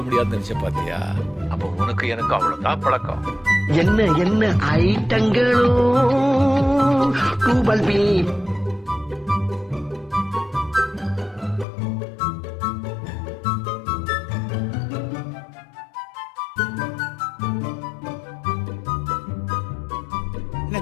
முடியாதுன்னு நினைச்ச பாத்தியா? அப்ப உனக்கு எனக்கு அவ்வளவுதான் பழக்கம். என்ன என்ன ஐட்டங்களோ டூபல் பி.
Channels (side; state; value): right; drops out; at 11.7 s